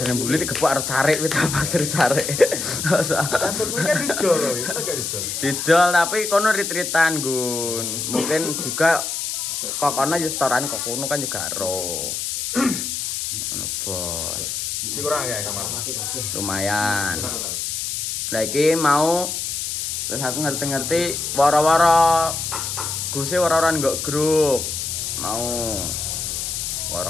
yang beli digebuk arep carik wit pasir carik. Kantor gue kan didol loh, itu gak didol. Didol tapi kono retreatan Gun. Mungkin juga kok kono yo setoran kok kono kan juga ro. Ngono, Bos. Cik kurang kayak kamar. Lumayan. Lah iki mau terus aku ngerti-ngerti wara-wara Guse wara-wara nggak grup. Mau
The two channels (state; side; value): noise; left; hiss, 3 dB below the sound